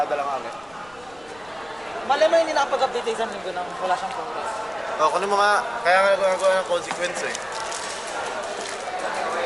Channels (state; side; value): noise; left; rumble, 27 dB below the sound